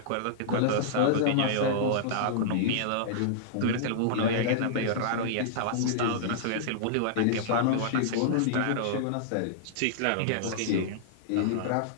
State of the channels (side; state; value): both; different; correlation -0.02